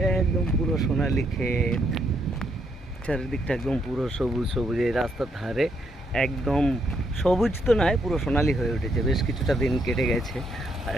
একদম পুরো সোনালি ক্ষেত। চারিদিকটা একদম পুরো সবুজ সবুজ, এই রাস্তার ধারে একদম সবুজ তো নয়, পুরো সোনালি হয়ে উঠেছে। বেশ কিছুটা দিন কেটে গেছে আর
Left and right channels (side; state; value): both; normal; correlation 0.75